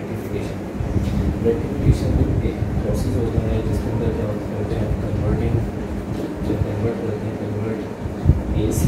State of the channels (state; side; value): identical; both; correlation 1.00